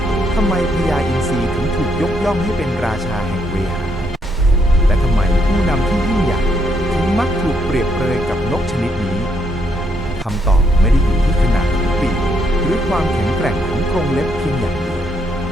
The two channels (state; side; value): normal; both; correlation 0.74